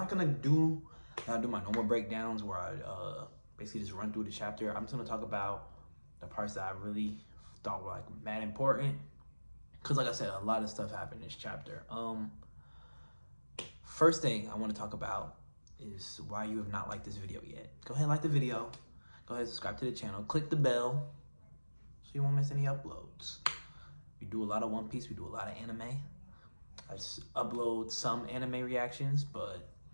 gonna do my normal breakdowns where I basically just run through the chapter. I'm just gonna talk about the parts that I really thought were like mad important. Because like I said, a lot of stuff happened in this chapter. First thing I want to talk about is why you have not liked this video yet. Go ahead and like the video. Go ahead and subscribe to the channel. Click the bell so you won't miss any uploads. We do a lot of One Piece. We do a lot of anime. I just upload some anime reactions, but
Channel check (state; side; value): inverted; both; correlation -1.00